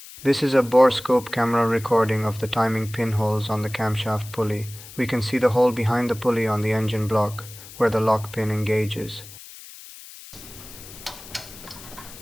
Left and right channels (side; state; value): left; noise; hiss, 17 dB below the sound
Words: This is a borescope camera recording of the timing pinholes on the camshaft pulley. We can see the hole behind the pulley on the engine block, where the lock pin engages.